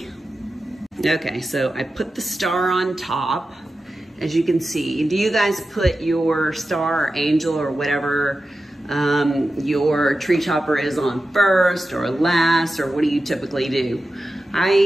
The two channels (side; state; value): both; normal; correlation 0.92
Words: Okay, so I put the star on top, as you can see. Do you guys put your star or angel or whatever your tree topper is on first or last, or what do you typically do?